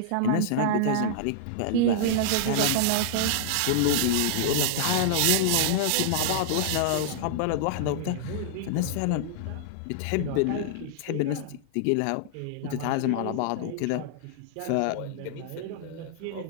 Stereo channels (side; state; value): both; different; correlation -0.01